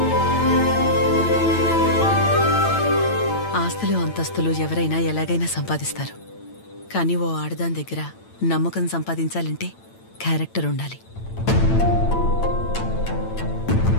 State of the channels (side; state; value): right; late; 8.9 ms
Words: ఆస్తులు అంతస్తులు ఎవరైనా ఎలాగైనా సంపాదిస్తారు, కానీ ఓ ఆడదాని దగ్గర నమ్మకం సంపాదించాలంటే క్యారెక్టర్ ఉండాలి.